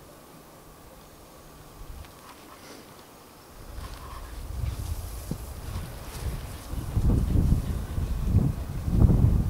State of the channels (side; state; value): both; identical; correlation 1.00